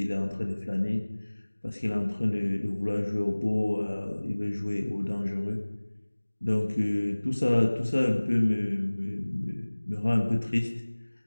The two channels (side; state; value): both; inverted; correlation -1.00